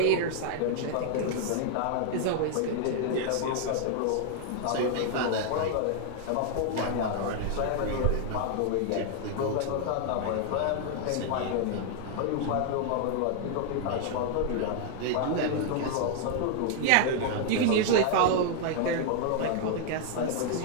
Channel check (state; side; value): different; both; correlation 0.00